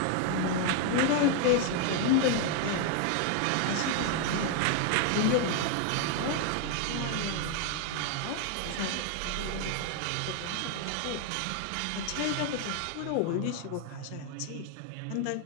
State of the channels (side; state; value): both; different; correlation 0.00